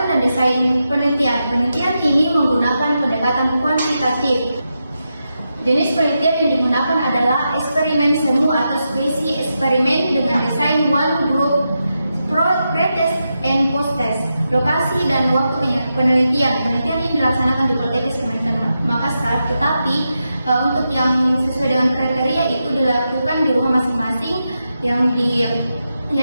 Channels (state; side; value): inverted; both; correlation -0.87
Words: dan desain penelitian. Penelitian ini menggunakan pendekatan kuantitatif. Jenis penelitian yang digunakan adalah eksperimen semu atau spesi eksperimen dengan desain one group, pre-test and post-test. Lokasi dan waktu penelitian. Penelitian ini dilaksanakan di Politeknik Kementerian Makassar, tetapi untuk yang sesuai dengan kriteria itu dilakukan di rumah masing-masing yang